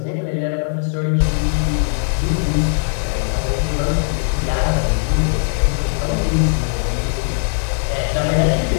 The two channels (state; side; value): silent; right; digital silence